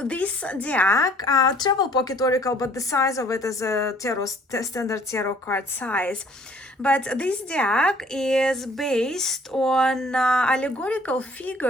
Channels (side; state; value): both; normal; correlation 0.57